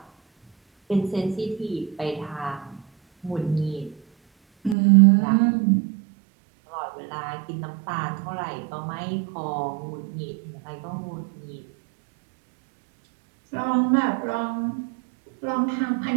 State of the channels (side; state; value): left; drops out; at 4.8 s